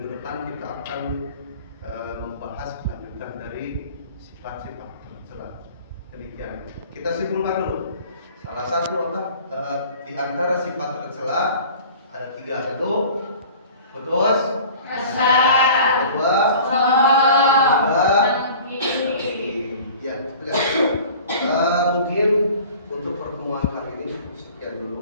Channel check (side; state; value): both; inverted; correlation -0.44